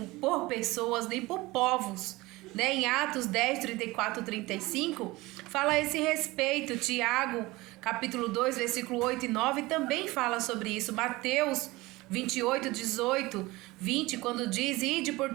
por pessoas nem por povos, né? Em Atos 10:34-35 fala a esse respeito. Tiago, capítulo 2, versículo 8 e 9 também fala sobre isso. Mateus 28:18-20, quando diz: ide por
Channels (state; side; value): quieter; left; 20.8 dB